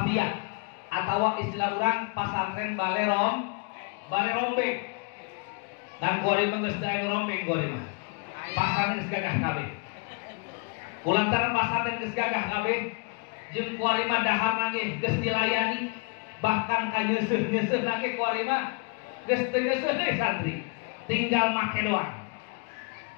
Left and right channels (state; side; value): quieter; right; 35.2 dB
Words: atau istilah orang pesantren balerombe. Dan kuari geus teu aya rombeng kuari mah. Pesantren geus gagah kabeh. Kulantaran pesantren geus gagah kabeh, jeung kuari mah dahar nangge geus dilayani, bahkan ka nyeuseuh-nyeuseuh nangge kuari mah geus teu nyeuseuh deui santri, tinggal make doang.